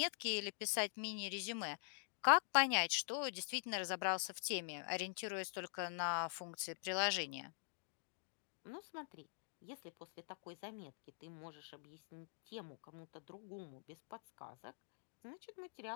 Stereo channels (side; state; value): right; silent; digital silence